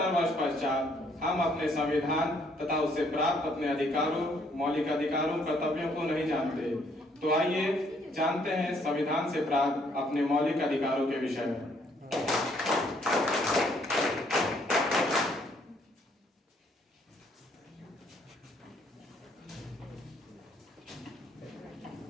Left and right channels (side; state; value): both; normal; correlation 0.67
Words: वर्ष पश्चात हम अपने संविधान तथा उससे प्राप्त अपने अधिकारों, मौलिक अधिकारों, कर्तव्यों को नहीं जानते। तो आइए जानते हैं संविधान से प्राप्त अपने मौलिक अधिकारों के विषय में।